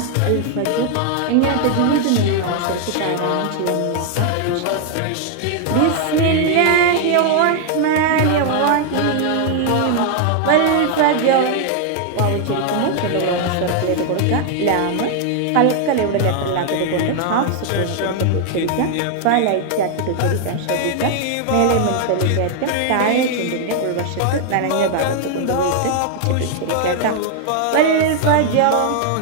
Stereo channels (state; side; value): different; both; correlation 0.00